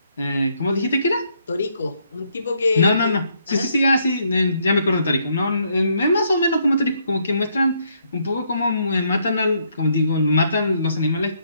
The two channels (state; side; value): inverted; both; correlation -0.72